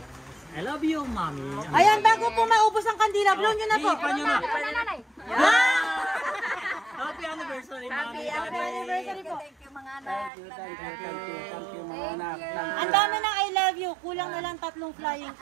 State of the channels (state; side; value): drops out; left; at 10.3 s